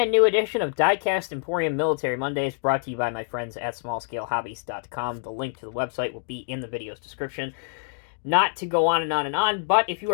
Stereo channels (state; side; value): silent; right; digital silence